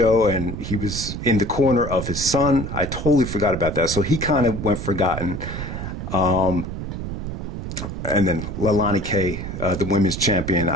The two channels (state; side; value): noise; right; rumble, 6 dB below the sound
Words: and he was in the corner of his son. I totally forgot about that. So he kind of went forgotten. And then Leilani K, the women's champion,